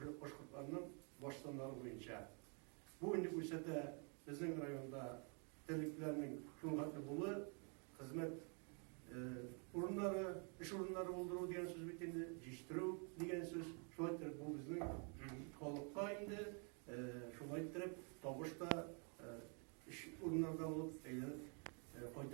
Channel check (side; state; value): left; quieter; 38.6 dB